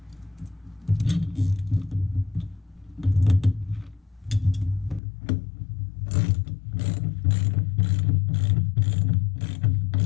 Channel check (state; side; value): drops out; right; at 5.0 s